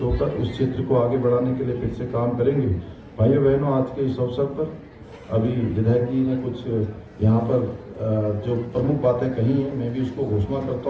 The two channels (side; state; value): both; identical; correlation 1.00